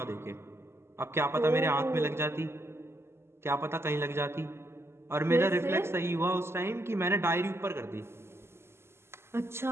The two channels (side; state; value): left; late; 0.12 ms